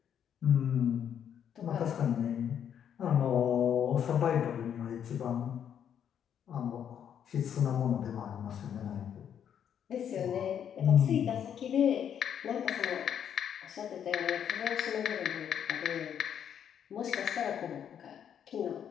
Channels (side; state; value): right; quieter; 8.9 dB